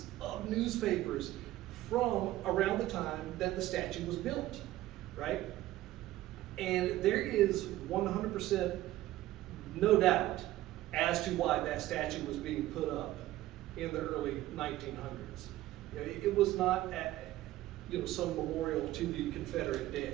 of newspapers from around the time that the statue was built, right? And there is 100% no doubt as to why that statue was being put up in the early 1900s. You know, it was not some memorial to the Confederate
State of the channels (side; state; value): left; quieter; 15.5 dB